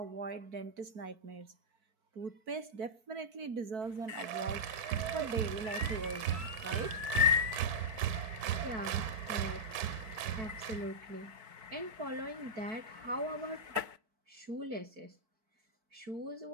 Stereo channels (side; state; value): left; late; 4.6 ms